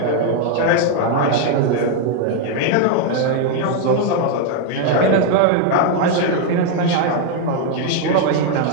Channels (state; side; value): different; both; correlation 0.01